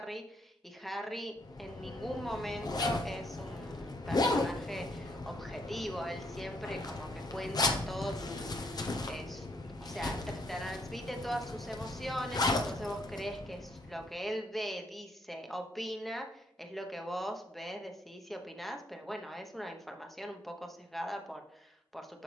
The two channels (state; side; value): normal; both; correlation 0.70